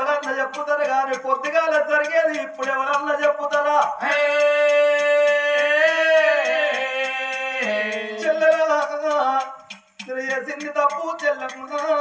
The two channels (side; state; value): both; identical; correlation 1.00